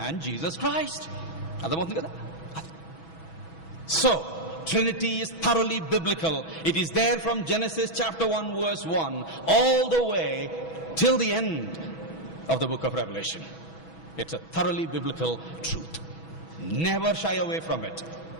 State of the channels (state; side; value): late; right; 6.1 ms